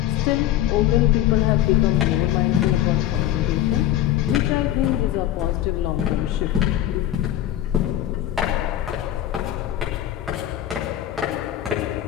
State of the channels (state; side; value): quieter; right; 12.5 dB